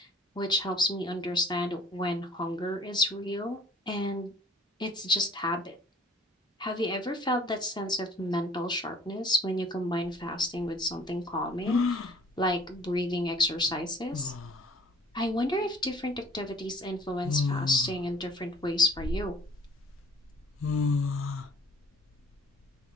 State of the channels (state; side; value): normal; both; correlation 0.53